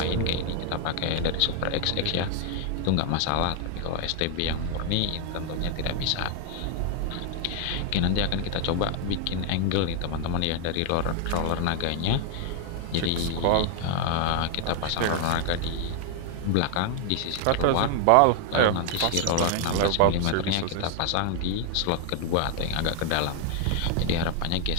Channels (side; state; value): both; different; correlation 0.00